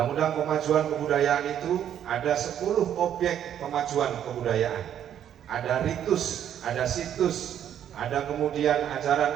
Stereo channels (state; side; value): quieter; left; 9.9 dB